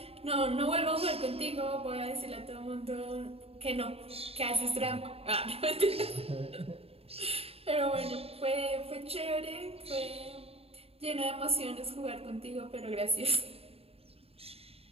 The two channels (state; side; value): late; left; 0.28 ms